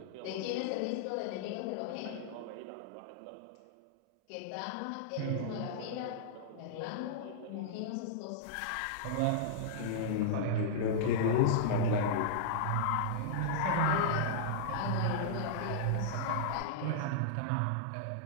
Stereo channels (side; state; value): both; different; correlation -0.02